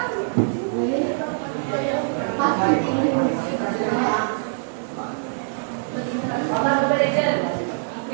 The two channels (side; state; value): left; silent; digital silence